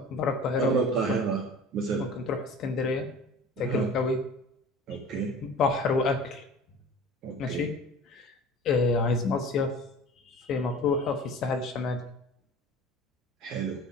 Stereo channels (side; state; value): both; normal; correlation 0.41